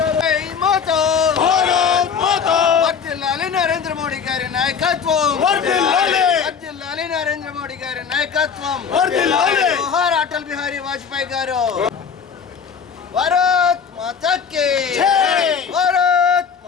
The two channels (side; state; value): right; quieter; 6.6 dB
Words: నరేంద్ర మోడీ గారి నాయకత్వం, నరేంద్ర మోడీ గారి నాయకత్వం, జోహార్ అటల్ బిహారీ వాజ్పేయి గారు. భారత్ మాతా కీ జై, భారత్